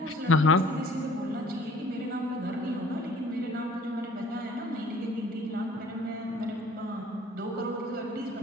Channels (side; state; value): both; normal; correlation 0.52